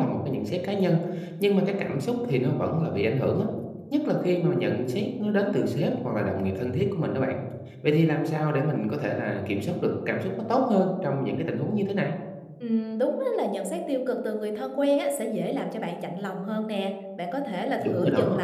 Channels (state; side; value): identical; both; correlation 1.00